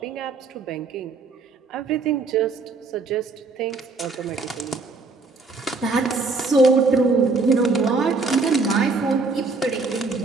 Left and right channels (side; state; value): left; quieter; 3.9 dB